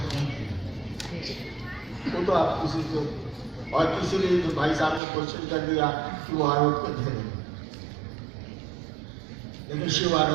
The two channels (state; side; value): drops out; left; at 5.0 s